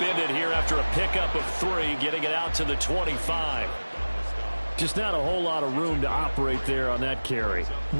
here after a pickup of 3, getting it out to the 25. Just not a whole lot of room to operate there on that carry.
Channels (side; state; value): both; inverted; correlation -1.00